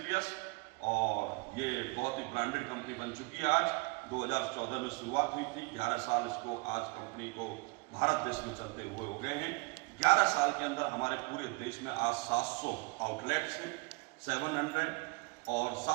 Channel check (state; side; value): quieter; left; 27.6 dB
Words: और ये बहुत ही ब्रांडेड कंपनी बन चुकी है। आज 2014 में शुरुआत हुई थी, 11 साल इसको आज कंपनी को भारत देश में चलते हुए हो गए हैं। 11 साल के अंदर हमारे पूरे देश में आज 700 आउटलेट्स हैं, 700, और